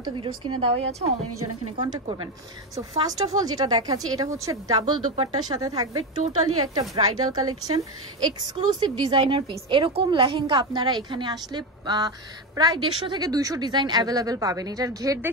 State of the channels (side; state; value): both; normal; correlation 0.14